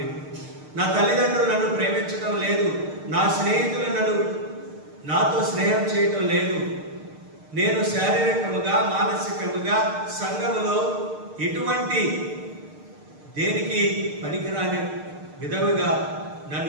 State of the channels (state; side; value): late; left; 6.6 ms